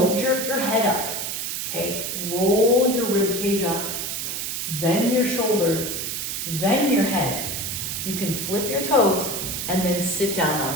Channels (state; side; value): noise; right; hiss, 3 dB below the sound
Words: jerk your head up, okay? Roll your rib cage up, then your shoulders, then your head. You can flip your toes and then sit down